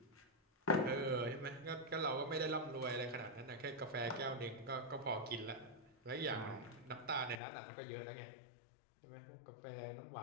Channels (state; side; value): drops out; right; at 7.4 s